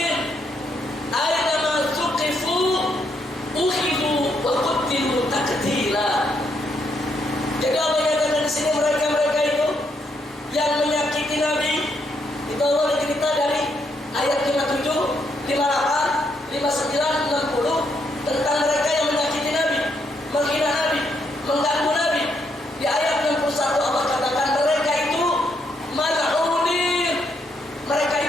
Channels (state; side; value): normal; both; correlation 0.76